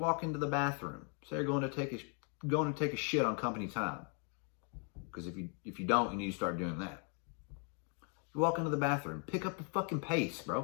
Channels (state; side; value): quieter; right; 39.6 dB